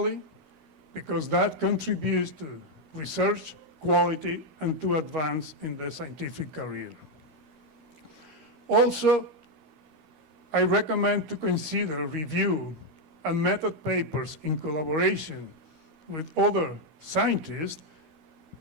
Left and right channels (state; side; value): late; left; 13 ms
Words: because that contributes to research quality and to advance in the scientific career. Also, I recommend to consider review and method papers in collaboration with other scientists